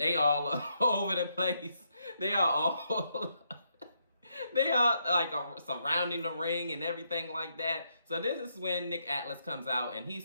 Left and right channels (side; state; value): both; inverted; correlation -0.78